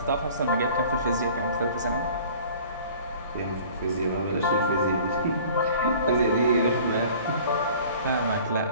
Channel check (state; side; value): inverted; both; correlation -0.48